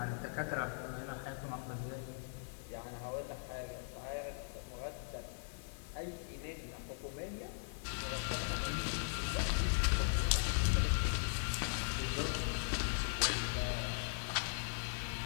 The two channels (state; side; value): silent; right; 51 dB below the other